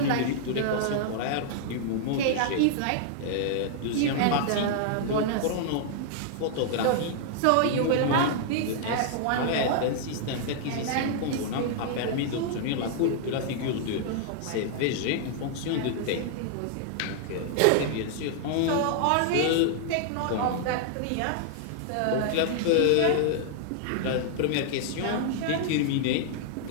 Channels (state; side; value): different; both; correlation -0.01